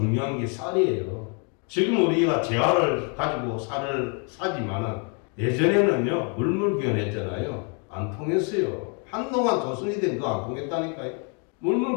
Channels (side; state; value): right; quieter; 37.8 dB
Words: 게 쌀이에요. 지금 우리가 재화를 가지고 쌀을 사지만은 예전에는요 물물교환했잖아요. 안 통했어요. 한동안 조선이 된 거 안 통했다니까요.